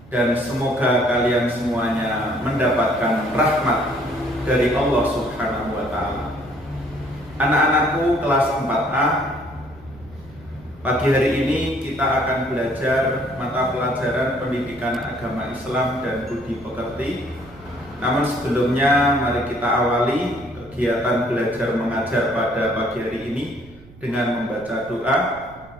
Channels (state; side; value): noise; right; rumble, 22 dB below the sound